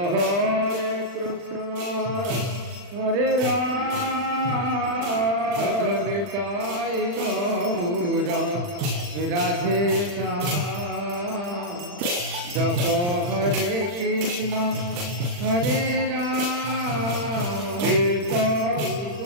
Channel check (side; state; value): left; late; 40 ms